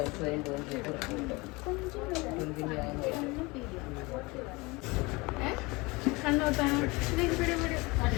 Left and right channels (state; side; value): quieter; right; 24.5 dB